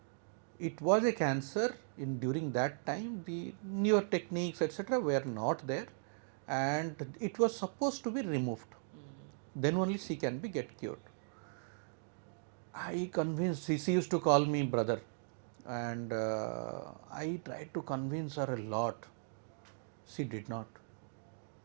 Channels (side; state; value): left; silent; digital silence